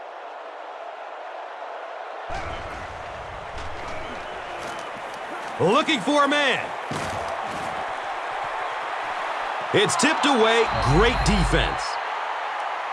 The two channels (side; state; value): both; identical; correlation 1.00